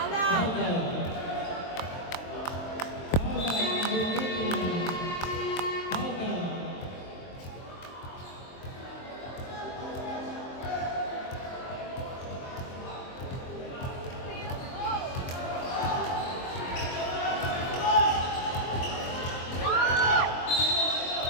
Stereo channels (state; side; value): late; right; 23 ms